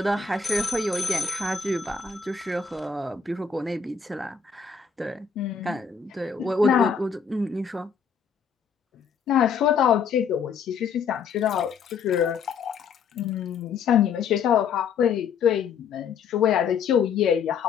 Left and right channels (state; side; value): quieter; right; 6.2 dB